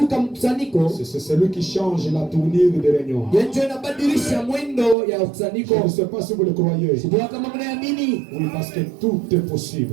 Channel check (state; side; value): drops out; left; at 5.0 s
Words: c'est celui qui change la tournure des réunions. Je ne sais pas si vous le croyez. Oui, parce que tout est